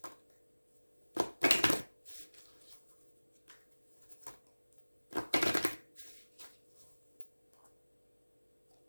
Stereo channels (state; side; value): inverted; both; correlation -1.00